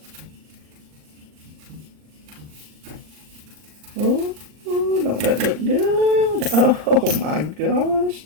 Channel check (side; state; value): left; late; 39 ms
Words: Oh, don't that look good? Oh my gosh.